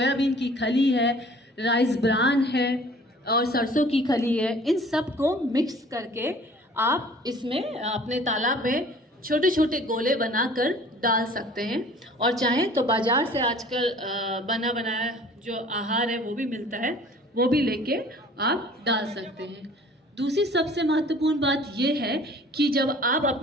की खली है, राइस ब्रान है और सरसों की खली है, इन सब को मिक्स करके आप इसमें अपने तालाब में छोटे छोटे गोले बनाकर डाल सकते हैं। और चाहें तो बाजार से आजकल बना बनाया जो आहार है वो भी मिलता है, वो भी लेके आप डाल सकते हैं। दूसरी सबसे महत्वपूर्ण बात ये है कि जब आप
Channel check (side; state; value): both; normal; correlation 0.50